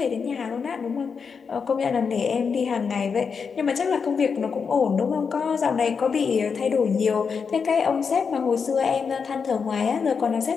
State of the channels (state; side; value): quieter; right; 5.8 dB